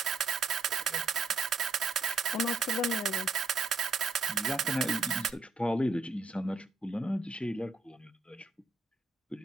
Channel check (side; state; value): left; quieter; 3.5 dB